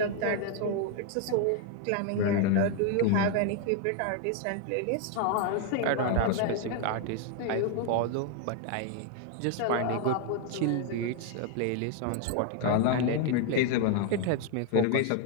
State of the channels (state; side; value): different; both; correlation 0.00